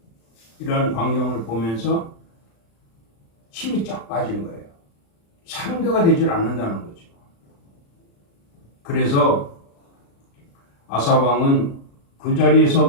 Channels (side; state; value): right; late; 35 ms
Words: 이런 광경을 보면서 힘이 쫙 빠진 거예요. 상대가 되질 않는다는 거죠. 그래서 아사 왕은 그 자리에서